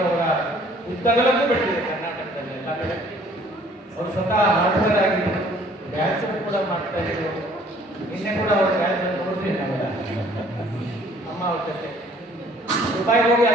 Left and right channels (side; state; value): both; normal; correlation 0.57